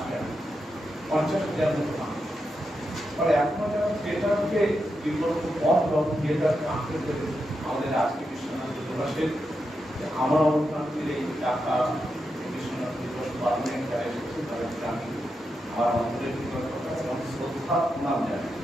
৫০,০০০ মতো মানুষ। ফলে এখনো যারা থিয়েটারকে বিকল্প পথ এবং থিয়েটারকে আঁকড়ে ধরে আমাদের আজকে বিশ্বনাথ দিবসের আমার অবস্থানের এই টাকা বিশ্বনাথ দিবস পালনের যারা এসেছে তাদেরকে আমি আমার অন্তরের কৃতজ্ঞতা এবং শ্রদ্ধা প্রণাম জানাই।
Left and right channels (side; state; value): both; normal; correlation 0.86